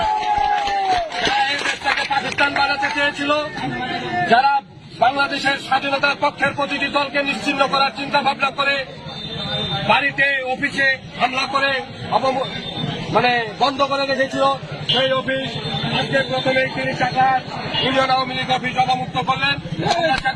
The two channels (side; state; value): both; identical; correlation 1.00